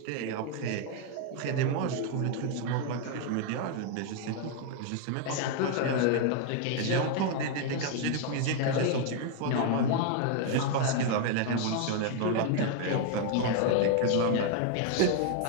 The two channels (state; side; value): different; both; correlation 0.00